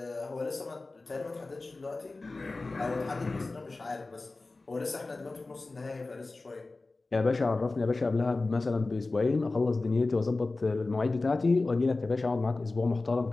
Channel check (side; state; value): right; quieter; 3.4 dB